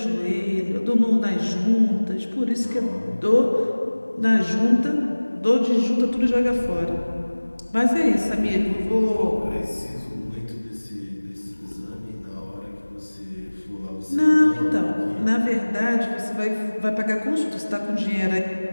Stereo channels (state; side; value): inverted; both; correlation -1.00